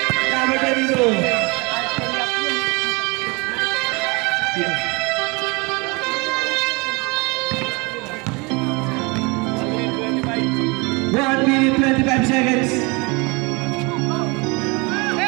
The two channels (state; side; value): quieter; left; 27.7 dB